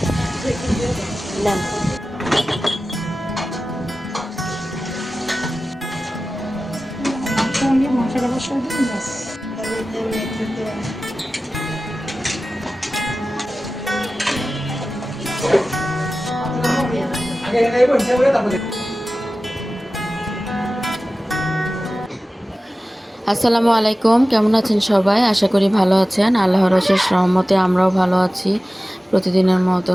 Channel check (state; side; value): normal; both; correlation 0.95